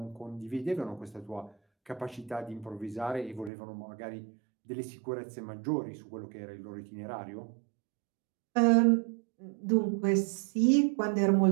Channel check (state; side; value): drops out; left; at 3.5 s